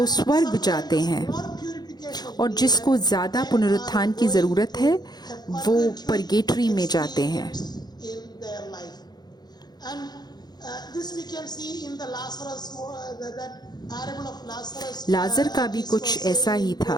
स्वर्ग जाते हैं, और जिसको ज़्यादा पुनरुत्थान की ज़रूरत है वो परगेटरी में जाते हैं। लाजर का भी कुछ ऐसा ही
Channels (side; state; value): right; late; 0.20 ms